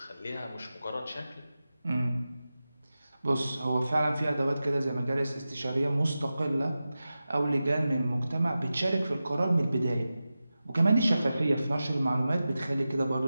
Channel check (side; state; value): both; inverted; correlation -0.94